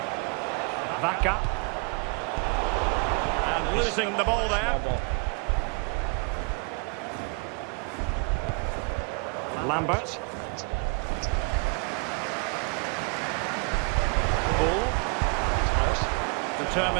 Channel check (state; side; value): quieter; left; 35.0 dB